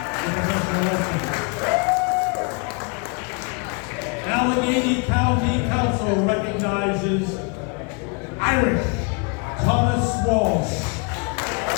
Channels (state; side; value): quieter; right; 34.0 dB